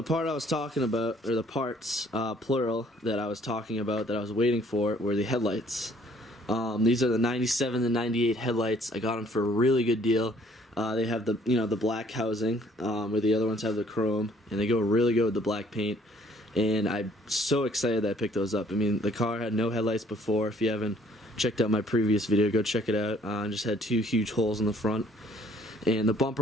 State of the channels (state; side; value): normal; both; correlation 0.60